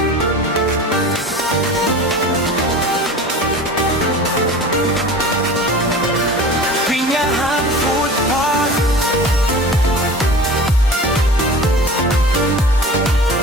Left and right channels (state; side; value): normal; both; correlation 0.38